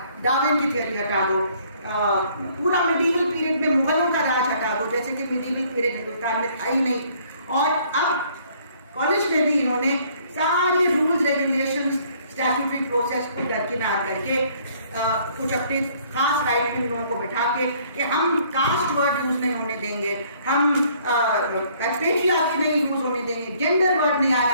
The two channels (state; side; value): inverted; both; correlation -0.61